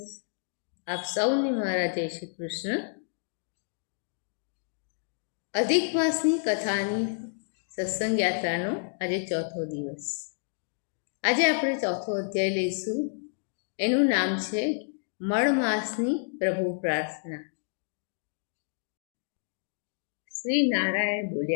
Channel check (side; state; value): right; silent; digital silence